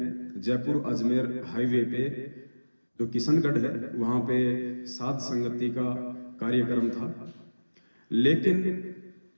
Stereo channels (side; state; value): both; inverted; correlation -1.00